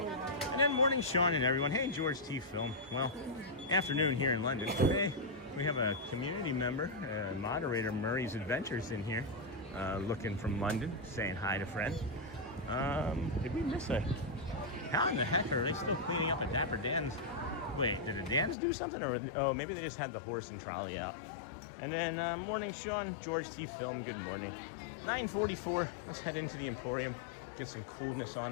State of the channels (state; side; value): drops out; right; at 18.6 s